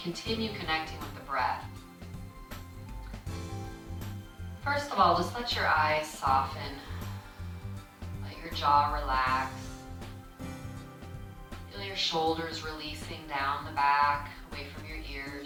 continue connecting with the breath. First of all, just let your eyes soften. Let your jaw relax. Feel your shoulders releasing down the back, away from your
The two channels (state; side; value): identical; both; correlation 1.00